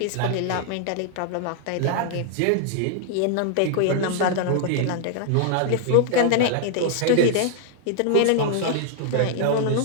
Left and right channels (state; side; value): different; both; correlation -0.01